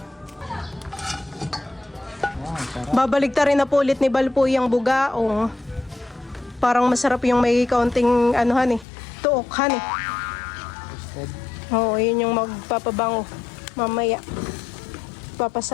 Wow, sarap. Babalik ta rin na po ulit ni Bal po yung bugaong. Parang masarap yung may kaunting anuhan eh. Tuokhan eh. Roasted. Oo, yun yung magpapabango. Mamaya.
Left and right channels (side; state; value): right; drops out; at 8.8 s